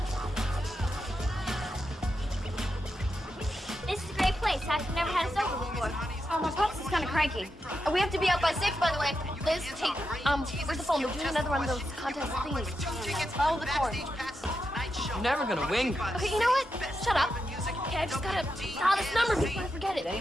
This is a great place. I've never had a sofa before. Oh, my pops is kind of cranky. We have to be up by 6, by the way. Liz, take, where's the phone? We're doing another one of those contest thingies. Follow the cord. You're never gonna win. Okay, you know what? Shut up. Okay, I just gotta dial this number before I forget Did it.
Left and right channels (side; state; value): both; normal; correlation 0.86